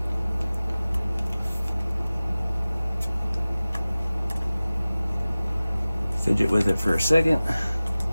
Fidget with it for a second.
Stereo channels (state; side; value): inverted; both; correlation -0.97